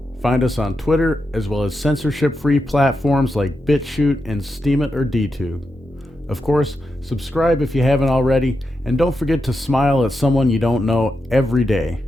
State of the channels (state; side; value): normal; both; correlation 0.87